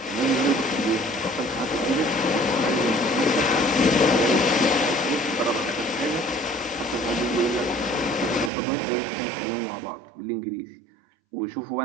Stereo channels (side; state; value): left; drops out; at 8.5 s